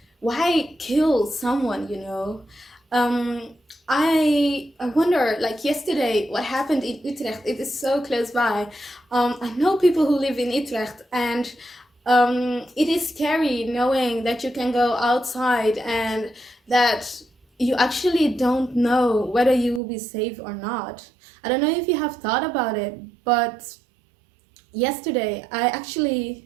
why kill someone, I wonder, like yesterday, what happened in Utrecht. It is so close by. I know people who live in Utrecht, and it is scary knowing that you can go outside and that you actually don't know whether you will be safe or not. I don't know if you have thought about it, but yesterday I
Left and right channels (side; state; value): left; drops out; at 19.8 s